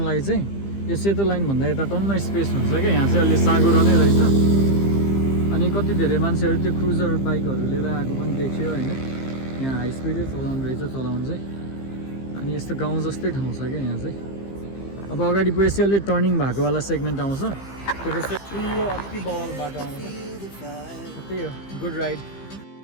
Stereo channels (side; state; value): right; late; 15 ms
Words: चाहिँ यो सेतो लाइनभन्दा यता टन्न स्पेस हुन्छ क्या. यहाँ चाहिँ अलि साँगुरो नै रहेछ. अनि कति धेरै मान्छेहरू त्यो क्रुजर बाइकहरू लिएर आएको पनि देखियो होइन. यहाँ हाई स्पिडै चलाउनु रहेछ चलाउनु चाहिँ. अनि यस्तो गाउँ जस्तै ठाउँ छ क्या यहाँ चाहिँ. अब अगाडि पुगेपछि अलि टर्निङ भएकोवाला सेगमेन्ट आउँछ. त्यो चाहिँ ठुलो अति बल बाटो आउँछ. त्यही हो. Good ride.